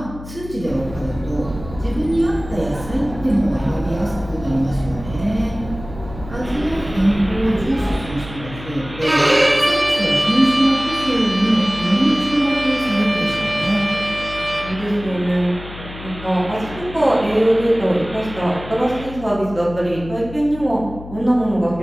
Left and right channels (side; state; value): left; noise; hum, 13 dB below the sound